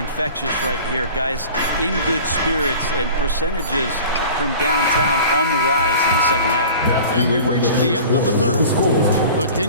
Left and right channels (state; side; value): inverted; both; correlation -0.41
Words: right here. Guys in good spirits and percentages from downtown on the rise in the second half. And we've reached the end of the third. The